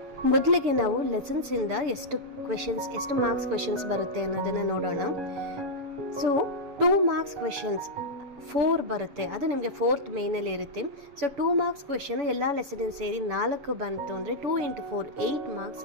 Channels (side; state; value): left; late; 6.9 ms